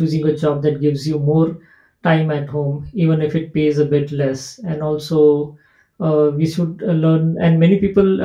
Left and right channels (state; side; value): identical; both; correlation 1.00